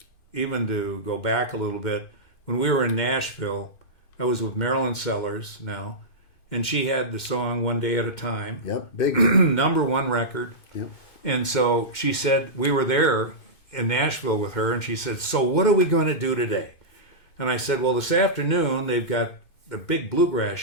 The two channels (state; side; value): late; right; 2.1 ms